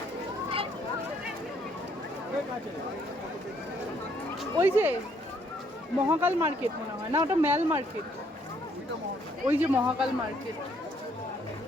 ওই যে মহাকাল মার্কেট মনে হয় না, ওটা মেল মার্কেট। ওই যে মহাকাল মার্কেট।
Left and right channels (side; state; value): both; normal; correlation 0.68